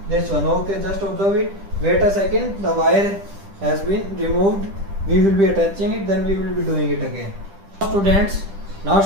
this one. Okay, just observe it. Wait a second, the wire has been removed. We will be attaching it, then we will be doing it again. Now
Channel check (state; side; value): late; left; 10 ms